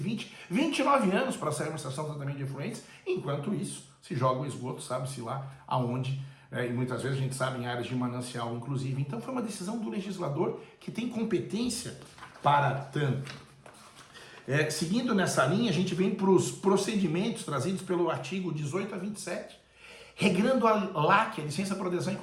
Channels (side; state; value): both; identical; correlation 1.00